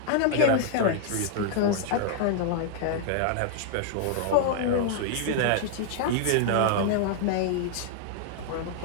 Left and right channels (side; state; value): both; different; correlation -0.01